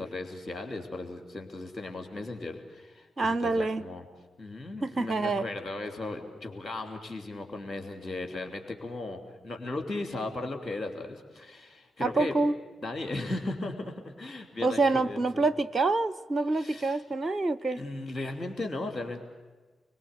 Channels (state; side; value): normal; both; correlation 0.84